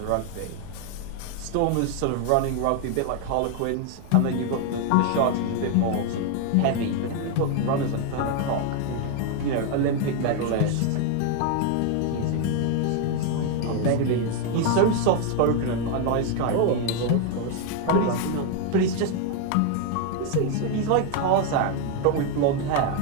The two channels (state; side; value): different; both; correlation 0.01